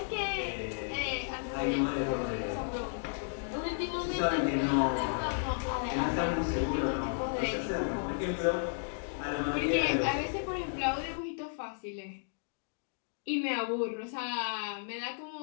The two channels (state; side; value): silent; right; digital silence